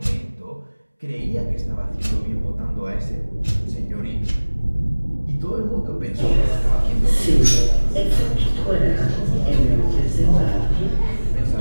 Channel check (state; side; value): inverted; both; correlation -1.00